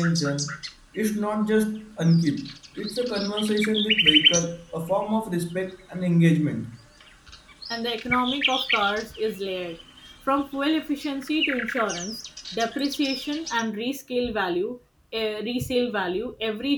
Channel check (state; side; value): identical; both; correlation 1.00